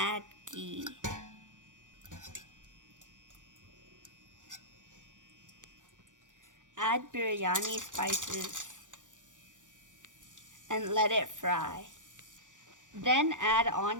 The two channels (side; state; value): left; late; 0.87 ms